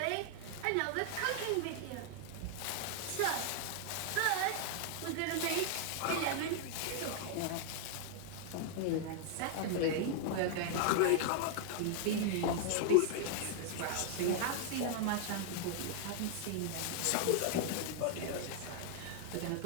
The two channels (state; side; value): different; both; correlation 0.00